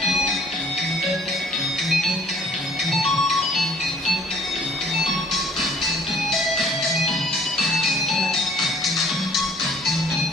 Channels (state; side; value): normal; both; correlation 0.56